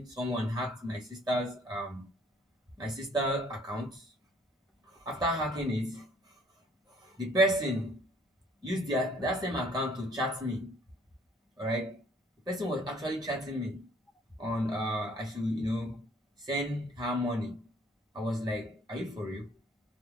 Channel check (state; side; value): normal; both; correlation 0.59